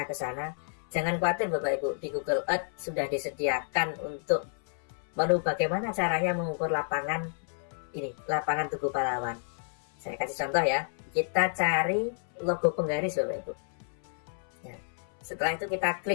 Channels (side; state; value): right; silent; 58 dB below the other